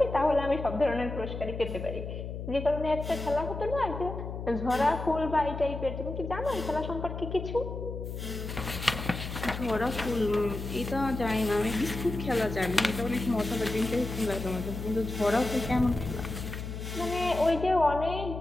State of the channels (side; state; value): left; noise; hum, 7 dB below the sound